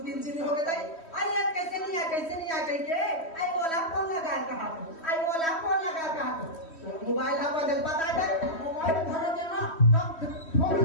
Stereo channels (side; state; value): right; late; 3.1 ms